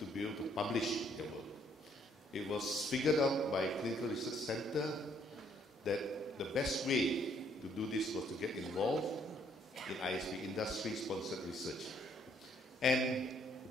be able to publish their work. It was figured out by Clinical Research Center that the best way to do this was to get involved in ISP, industry-sponsored research. And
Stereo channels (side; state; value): both; normal; correlation 0.67